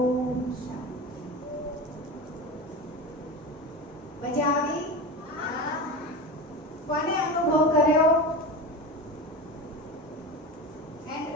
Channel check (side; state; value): both; normal; correlation 0.26